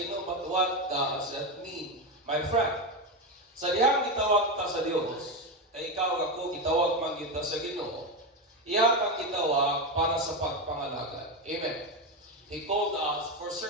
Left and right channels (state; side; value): normal; both; correlation 0.13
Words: but what does that mean, my friend? Sa dihang gitawag ta sa Dios, kay ikaw ako gitawag man kita sa Ginoo, iya kang gitawag para sa pagpangalagad. Amen. He called us for